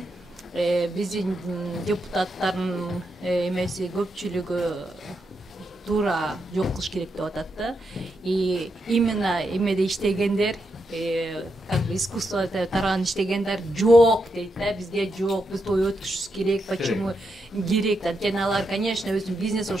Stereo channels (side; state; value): both; normal; correlation 0.83